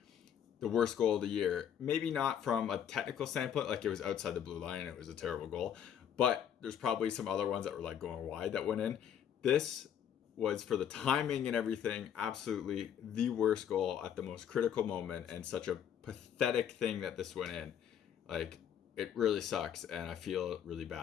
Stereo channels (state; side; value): quieter; right; 9.1 dB